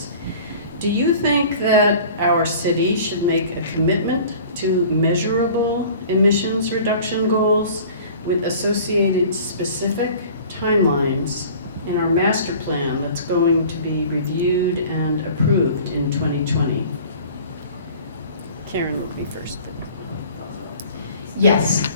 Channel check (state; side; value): inverted; both; correlation -0.46